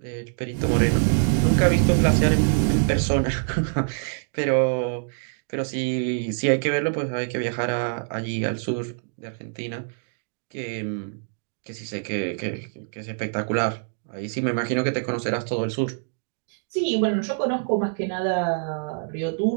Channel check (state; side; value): silent; left; digital silence